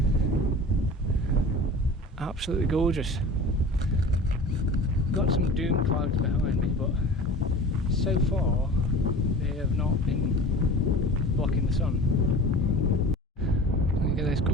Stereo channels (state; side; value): normal; both; correlation 0.38